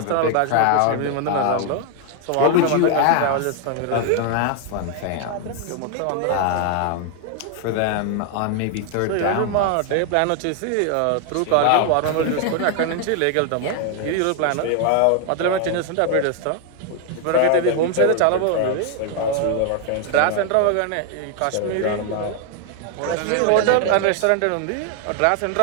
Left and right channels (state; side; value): different; both; correlation 0.00